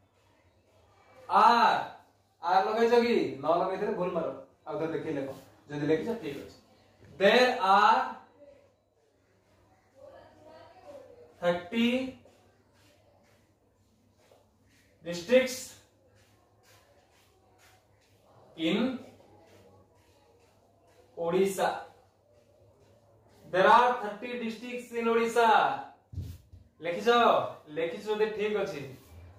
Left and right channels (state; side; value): identical; both; correlation 1.00